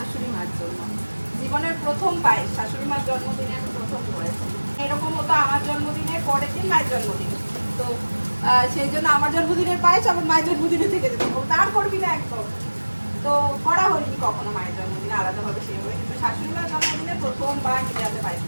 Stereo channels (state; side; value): inverted; both; correlation -1.00